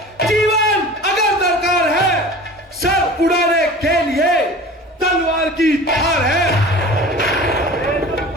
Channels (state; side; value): normal; both; correlation 0.39